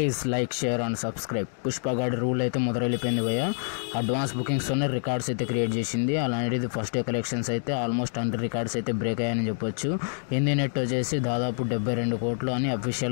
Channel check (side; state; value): right; silent; digital silence